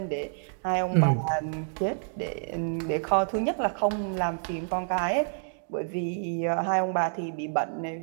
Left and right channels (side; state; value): left; silent; digital silence